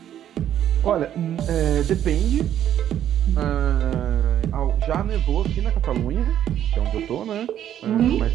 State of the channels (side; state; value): left; quieter; 10.7 dB